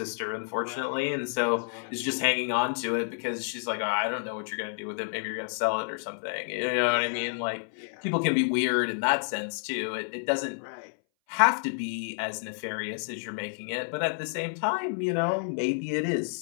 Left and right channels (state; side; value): silent; right; 58 dB below the other